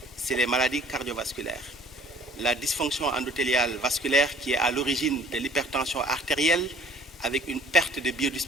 c'est les maladies cardiovasculaires. La dysfonction endothéliale vasculaire qui est à l'origine de l'hypertension artérielle, avec une perte de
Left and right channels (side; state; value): both; normal; correlation 0.52